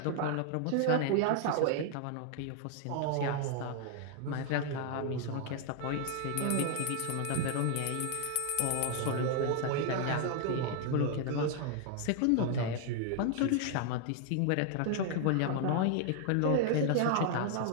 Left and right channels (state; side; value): different; both; correlation 0.00